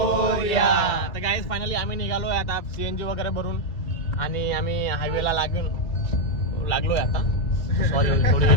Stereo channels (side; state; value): right; late; 2.7 ms